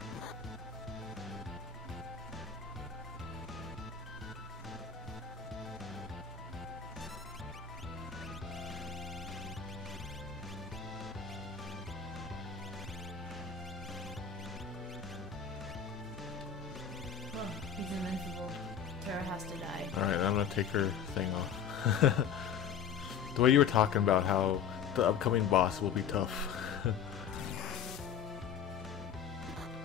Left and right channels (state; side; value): quieter; right; 7.6 dB